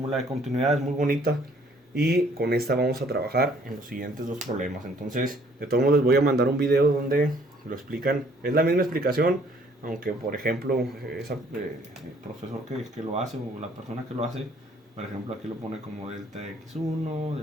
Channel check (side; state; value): both; normal; correlation 0.61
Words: de continuidad, es muy bonita, y con esta vamos a trabajar en los siguientes dos problemas. Entonces, de todos modos, les voy a mandar un video donde lo explican. Es la misma explicación, aunque por ejemplo el profesor que lo hace, o la persona que lo hace, por ejemplo aquí lo pone como delta x1,